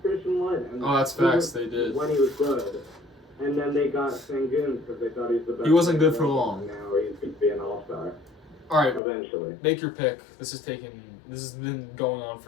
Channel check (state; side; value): drops out; right; at 9.0 s